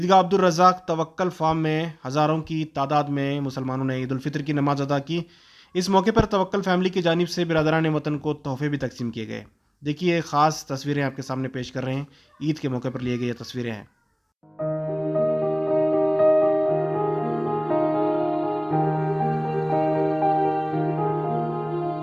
عبدالرزاق توکل فارم میں ہزاروں کی تعداد میں مسلمانوں نے عید الفطر کی نماز ادا کی۔ اس موقع پر توکل فیملی کی جانب سے برادران وطن کو تحفے بھی تقسیم کیے گئے۔ دیکھیے خاص تصویریں آپ کے سامنے پیش کر رہے ہیں، عید کے موقع پر لیے گئے یہ تصویریں ہیں۔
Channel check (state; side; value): identical; both; correlation 1.00